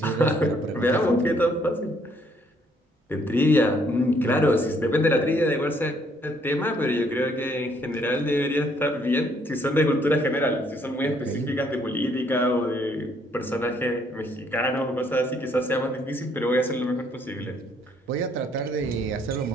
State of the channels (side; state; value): both; normal; correlation 0.67